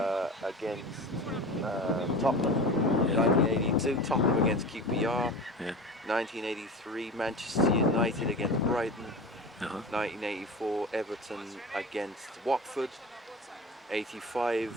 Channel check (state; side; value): normal; both; correlation 0.32